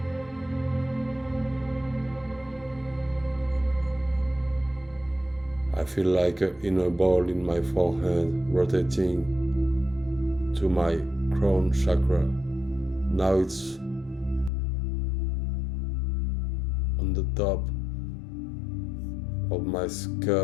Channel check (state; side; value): drops out; right; at 14.5 s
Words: I feel like an inner ball in my forehead rotating to my crown chakra. Now it's on the top of my